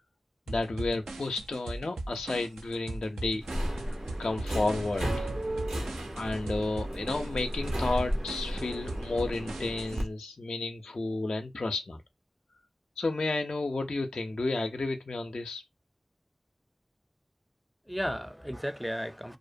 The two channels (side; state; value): both; normal; correlation 0.93